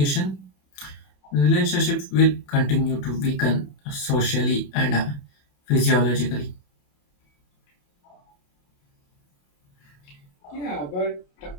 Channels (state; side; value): late; right; 27 ms